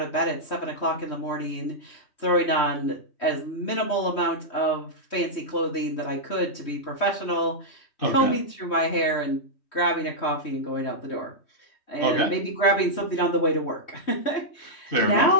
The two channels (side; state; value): right; late; 3.1 ms